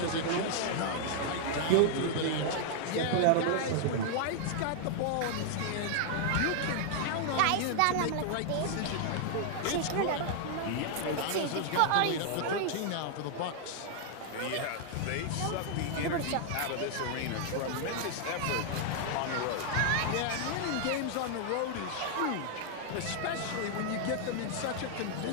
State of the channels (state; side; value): different; both; correlation 0.00